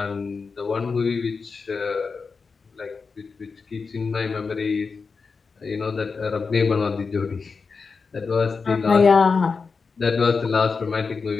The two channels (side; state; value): right; quieter; 4.8 dB